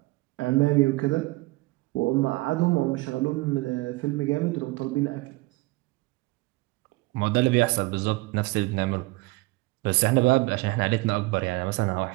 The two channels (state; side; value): quieter; left; 22.6 dB